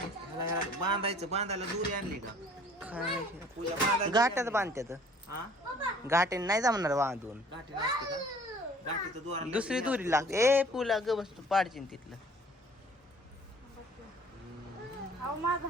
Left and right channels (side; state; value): both; normal; correlation 0.53